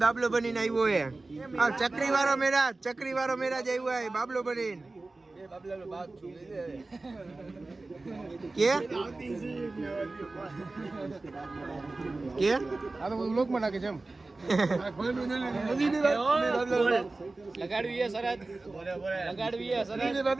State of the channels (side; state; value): left; quieter; 3.3 dB